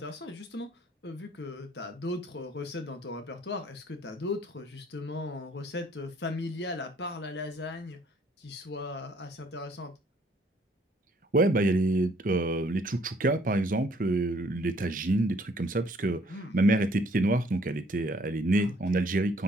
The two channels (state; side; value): normal; both; correlation 0.62